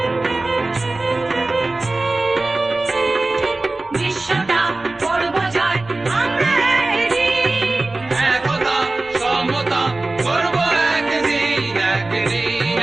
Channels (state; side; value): quieter; left; 3.0 dB